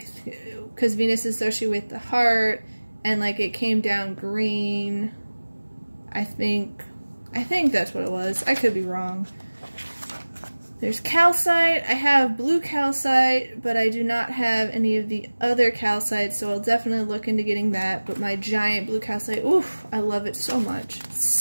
Venus is associated with the heart and like it came down green. I think that's what it was. I could be wrong. There's calcite. I have blue calcite, but I do not have any of the other calcites, so I'll definitely look into getting that. But my giant blue calcite, oof, I love it so much. It's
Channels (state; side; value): inverted; both; correlation -1.00